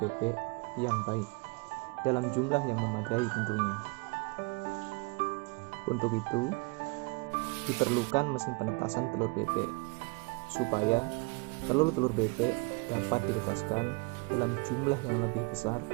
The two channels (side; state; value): left; quieter; 28.4 dB